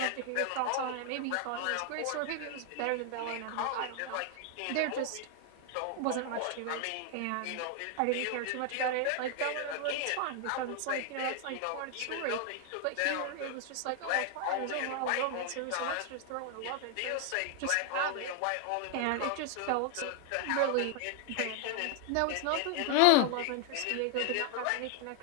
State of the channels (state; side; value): different; both; correlation 0.00